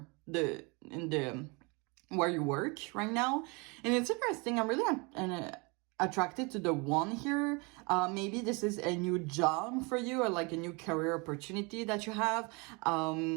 the where you work right now. And it's interesting. I'm really attracted to the one here. Maybe this is a new job for you, or like a new career opportunity that you have.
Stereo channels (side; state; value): left; quieter; 29.2 dB